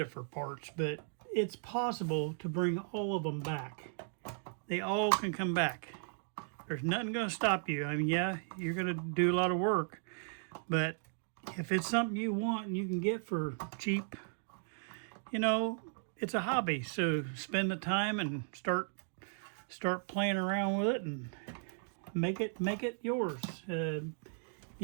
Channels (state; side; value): silent; left; digital silence